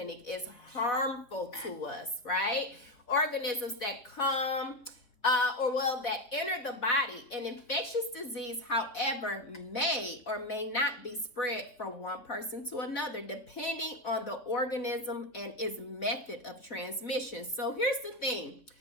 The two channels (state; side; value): late; right; 3.8 ms